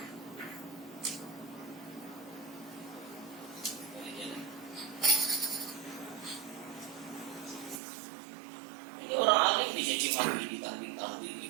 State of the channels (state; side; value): drops out; left; at 7.8 s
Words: Jadi orang alim dicaci maki, ditanding-tanding,